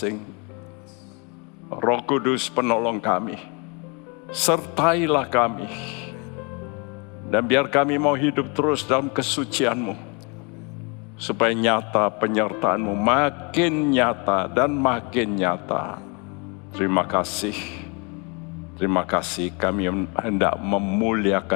Roh Kudus penolong kami, sertailah kami. Dan biar kami mau hidup terus dalam kesucian-Mu, supaya nyata penyertaan-Mu makin nyata dan makin nyata. Terima kasih. Terima kasih, kami hendak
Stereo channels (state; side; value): quieter; right; 32.3 dB